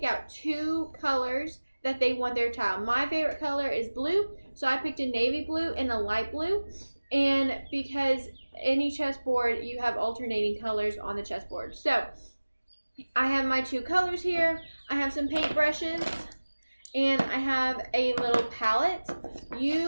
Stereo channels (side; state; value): both; inverted; correlation -1.00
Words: out 2 colors that they want their tile. My favorite color is blue, so I picked a navy blue and a light blue. And because any chessboard, you have alternating colors on the chessboard. So I have my 2 colors here. I have some paint brushes. And I have a little palette.